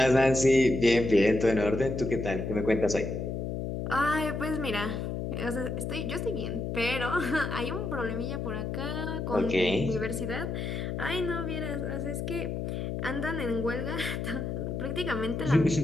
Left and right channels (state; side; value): noise; left; hum, 3 dB below the sound